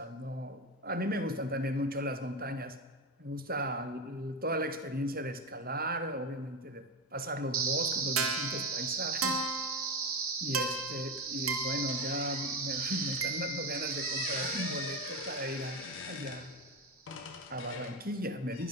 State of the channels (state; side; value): normal; both; correlation 0.17